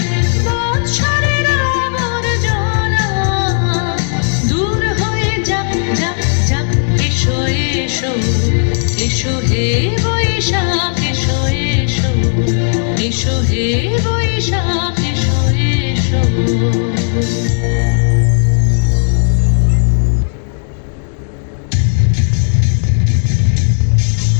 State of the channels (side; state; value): right; silent; digital silence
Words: বৎসরের আবর্জনা দূর হয়ে যাক যাক যাক এসো এসো এসো হে বৈশাখ এসো এসো এসো হে বৈশাখ এসো এসো